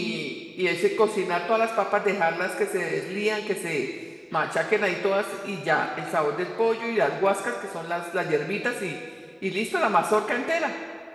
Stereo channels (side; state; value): both; identical; correlation 1.00